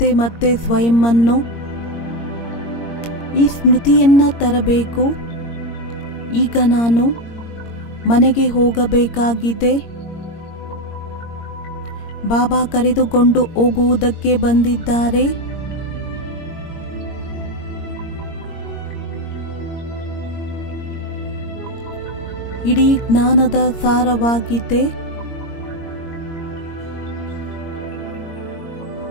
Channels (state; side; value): late; right; 22 ms